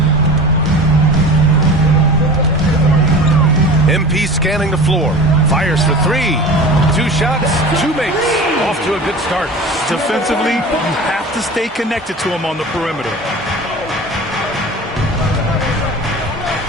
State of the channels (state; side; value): normal; both; correlation 0.36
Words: MP scanning the floor. Fires for three. 2 shots, 2 makes. Off to a good start. Defensively, you have to stay connected to him on the perimeter.